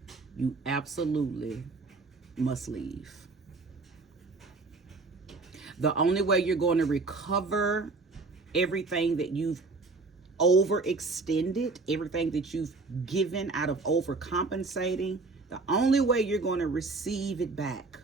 you absolutely must leave. The only way you're going to recover everything that you've overextended, everything that you've given out of overcompensating, the only way you're going to receive it back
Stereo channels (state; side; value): quieter; left; 3.8 dB